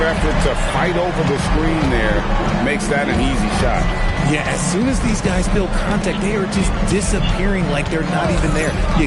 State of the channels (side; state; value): both; identical; correlation 1.00